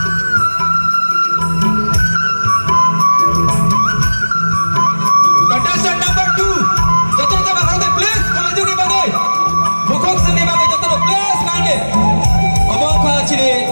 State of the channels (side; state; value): both; inverted; correlation -1.00